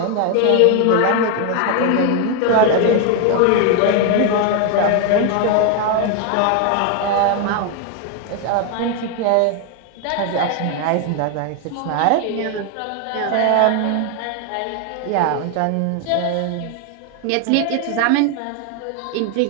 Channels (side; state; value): both; different; correlation 0.01